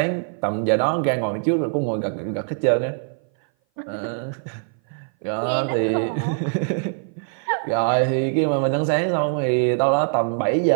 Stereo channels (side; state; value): left; silent; 58 dB below the other